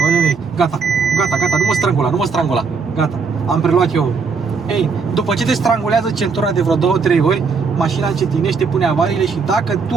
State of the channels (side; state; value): left; quieter; 5.1 dB